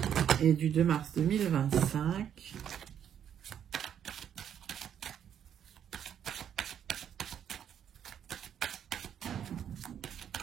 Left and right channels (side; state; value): left; quieter; 9.2 dB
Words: et du 2 mars 2025.